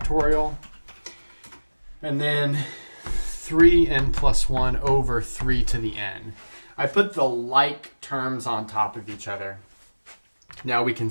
And then 3n plus 1 over 3 to the n. I put the like terms on top of each other. Now we can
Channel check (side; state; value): both; inverted; correlation -1.00